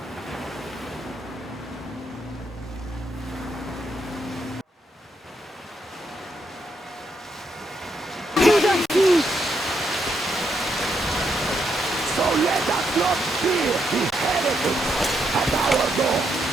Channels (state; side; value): normal; both; correlation 0.79